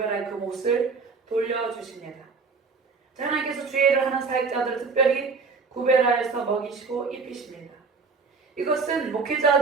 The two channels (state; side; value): quieter; left; 4.7 dB